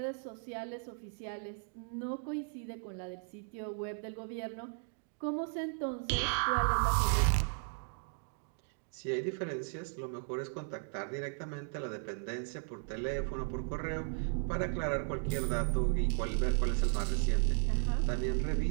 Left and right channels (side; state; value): left; silent; 54 dB below the other